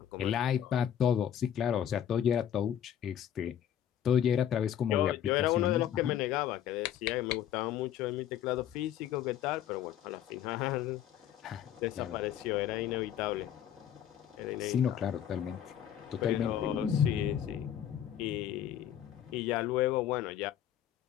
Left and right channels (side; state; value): right; quieter; 10.2 dB